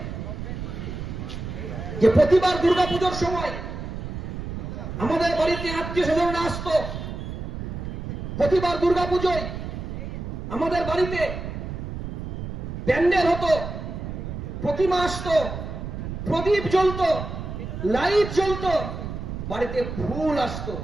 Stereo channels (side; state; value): right; noise; rumble, 7 dB below the sound